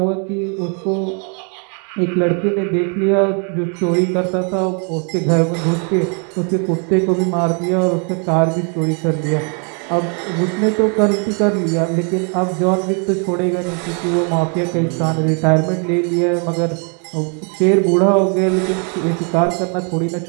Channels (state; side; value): quieter; left; 39.5 dB